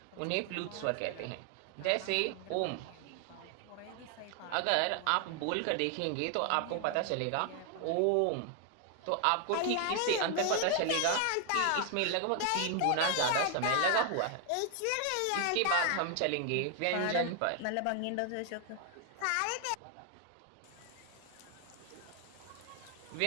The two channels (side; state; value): both; different; correlation 0.00